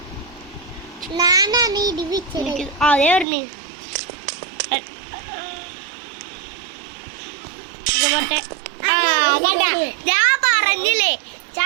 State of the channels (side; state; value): left; drops out; at 3.2 s